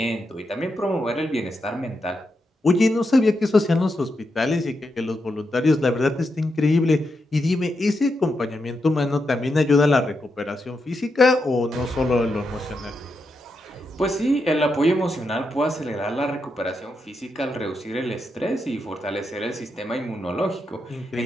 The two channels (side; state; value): both; normal; correlation 0.84